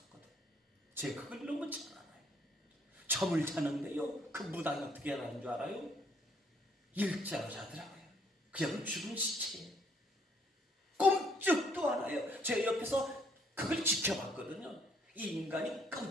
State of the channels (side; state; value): both; normal; correlation 0.66